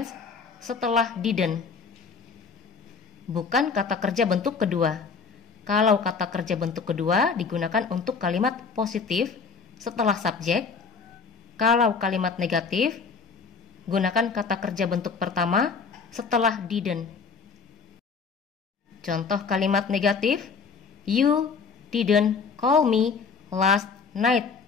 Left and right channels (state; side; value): quieter; right; 5.3 dB